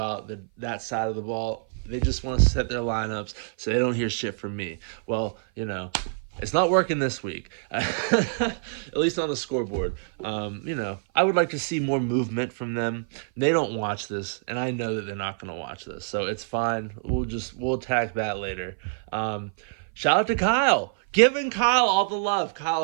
that side of the ball. They just want to set their lineups so they don't hear shit from me. Well, it's not working this week, at least on the scoreboard. I would like to see more movement from them. They don't watch this, and I know that they're not going to watch this, so it's fine. We'll attack that later. Shout out to Kyle. Giving Kyle all the love. Kyle,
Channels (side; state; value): left; silent; 56 dB below the other